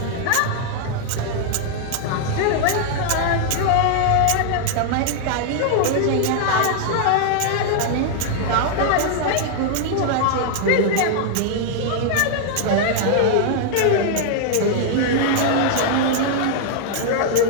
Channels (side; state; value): both; different; correlation -0.01